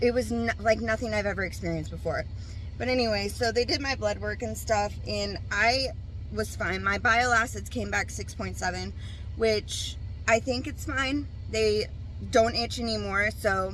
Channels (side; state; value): both; identical; correlation 1.00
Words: was like nothing I've ever experienced before. But anyway, so they did my blood work and stuff, and I was fine. My bile acids came back 6.7, which I think it's fine. They don't itch anymore, so,